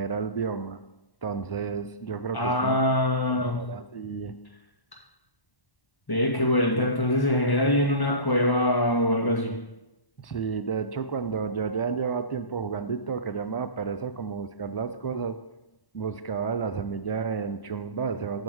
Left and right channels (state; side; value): late; right; 1.1 ms